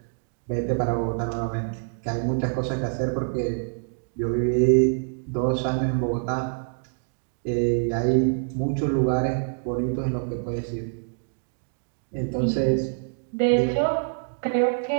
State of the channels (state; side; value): silent; left; digital silence